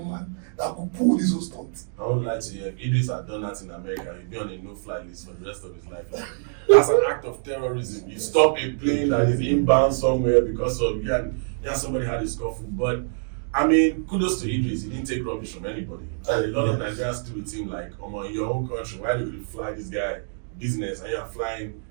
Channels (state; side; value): silent; left; digital silence